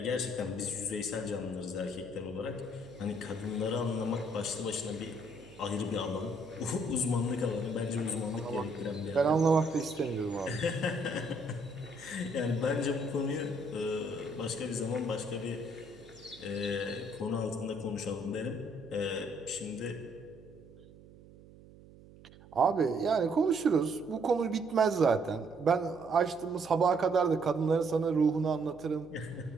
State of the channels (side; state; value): right; noise; hum, 21 dB below the sound